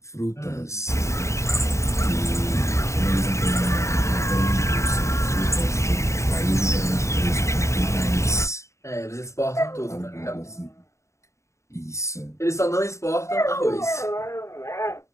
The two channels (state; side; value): late; right; 0.14 ms